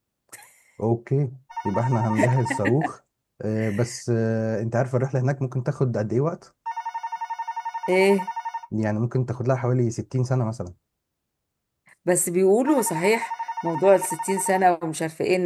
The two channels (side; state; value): both; identical; correlation 1.00